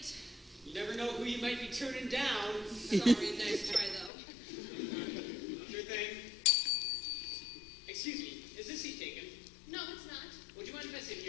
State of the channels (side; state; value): right; drops out; at 4.1 s